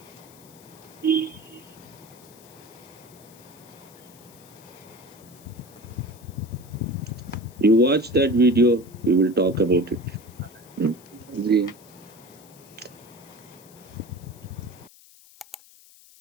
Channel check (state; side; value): noise; left; hiss, 24 dB below the sound